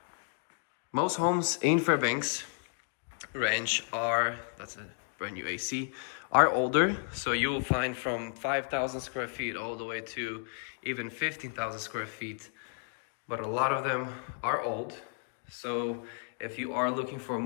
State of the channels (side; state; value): right; silent; 56 dB below the other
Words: Most homes in Fairbanks Ranch are, that's a brand new AC, are older. So you'll find from 5,000 square feet all the way to even 15,000 square feet. But a lot of them are old. So if you are looking for a